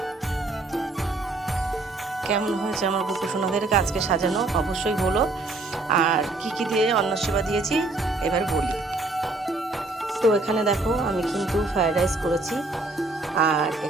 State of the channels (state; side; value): quieter; left; 3.1 dB